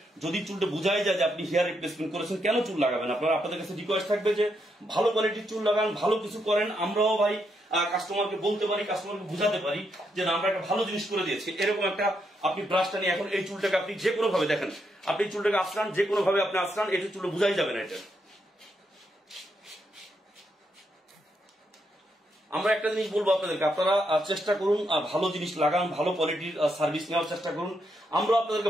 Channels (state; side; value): normal; both; correlation 0.80